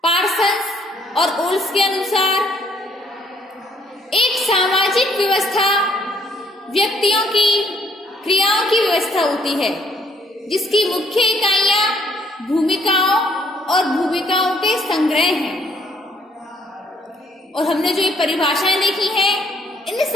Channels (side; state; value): both; normal; correlation 0.65